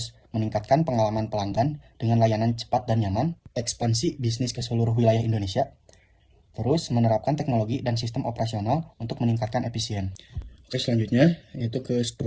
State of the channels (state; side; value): identical; both; correlation 1.00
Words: meningkatkan pengalaman pelanggan dengan layanan cepat dan nyaman, ekspansi bisnis ke seluruh wilayah Indonesia, terus menerapkan teknologi dan sistem operasional untuk meningkatkan efisien. Oke, selanjutnya yaitu ke